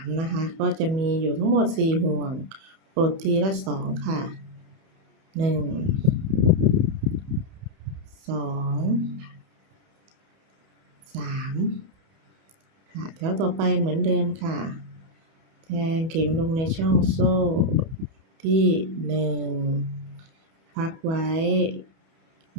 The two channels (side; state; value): left; late; 31 ms